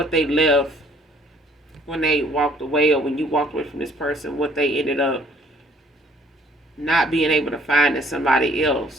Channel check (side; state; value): both; normal; correlation 0.60